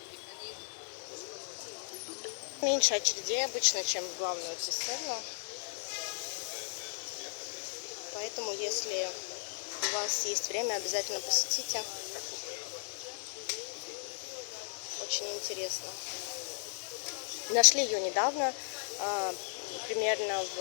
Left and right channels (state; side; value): silent; right; digital silence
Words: Меньше очередей обычно, чем в главную цистерну. Поэтому, если у вас есть время, обязательно посетите. Очень интересно. Нашли ее недавно, примерно